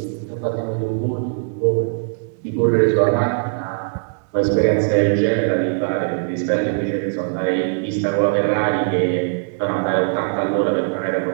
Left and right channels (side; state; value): left; silent; 66 dB below the other